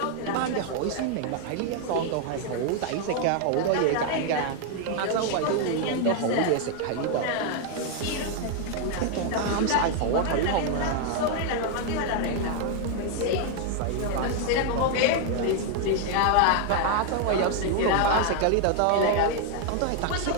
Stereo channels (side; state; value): both; different; correlation 0.00